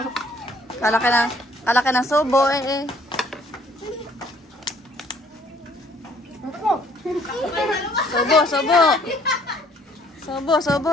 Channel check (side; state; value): both; normal; correlation 0.62